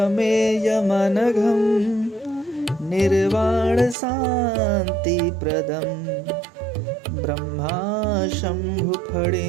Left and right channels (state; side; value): drops out; left; at 4.0 s